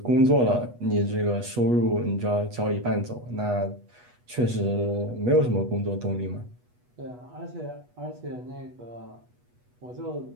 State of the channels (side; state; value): left; late; 8.2 ms